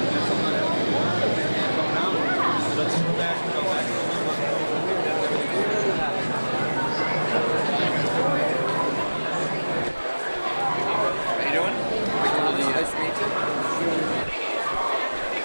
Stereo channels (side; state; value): both; inverted; correlation -1.00